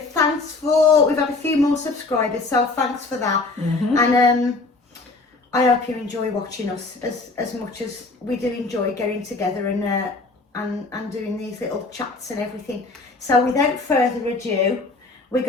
we've had a few more subscribers, so thanks for that. And I hope you enjoy watching us as much as we do enjoy getting together and doing these little chats and everything. So without further ado, we're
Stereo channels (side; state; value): right; quieter; 3.6 dB